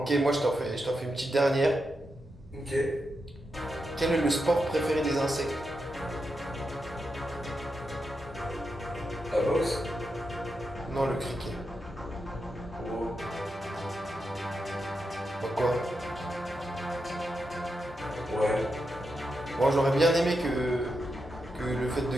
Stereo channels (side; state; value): both; normal; correlation 0.86